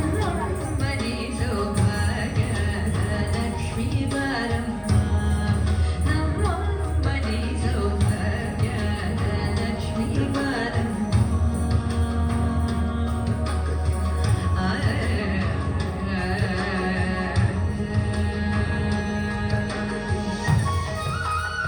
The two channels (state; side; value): identical; both; correlation 1.00